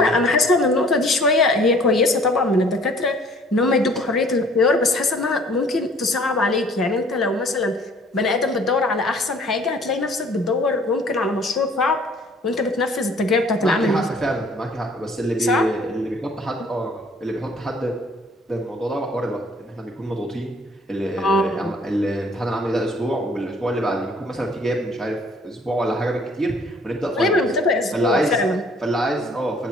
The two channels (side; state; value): both; normal; correlation 0.55